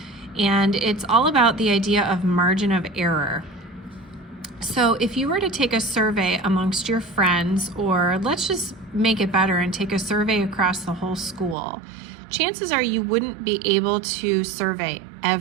and it's all about the idea of margin of error. So if you were to take a survey amongst your friends, or let's just make it better and take a survey across the whole school, chances are you wouldn't be able to survey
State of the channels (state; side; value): drops out; left; at 11.6 s